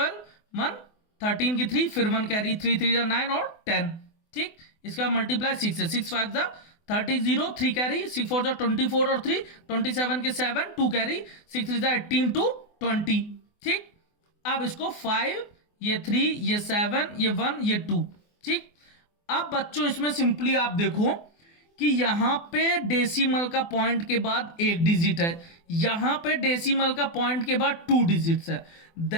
1 13 की 3, फिर 1 कैरी, 3 3 जा 9 और 10, ठीक। इसका मल्टीप्लाई 6 से, 6 5 जा 30 0, 3 कैरी, 6 4 जा 24 और 3 27 के 7, 2 कैरी, 6 3 जा 18 to 20, ठीक। अब इसको 5, ये 3, ये 7, ये 1, ये 2, ठीक। अब बच्चों इसमें सिंपली आप देखो कि यहां पे डेसिमल का पॉइंट के बाद एक डिजिट है, यहां पे डेसिमल का पॉइंट के बाद 2 डिजिट्स है।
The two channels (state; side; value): late; right; 24 ms